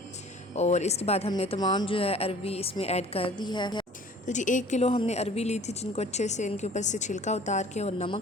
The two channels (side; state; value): both; normal; correlation 0.49